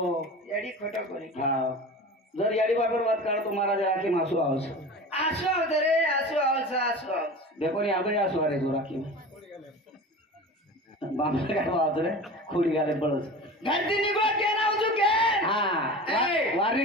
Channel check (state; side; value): normal; both; correlation 0.34